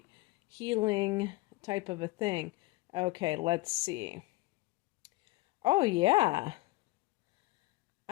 healing type of a thing. Okay, let's see. Oh, yeah.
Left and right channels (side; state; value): right; quieter; 21.1 dB